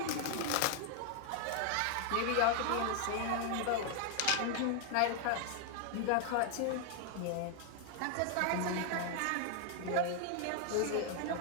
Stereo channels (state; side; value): different; both; correlation 0.00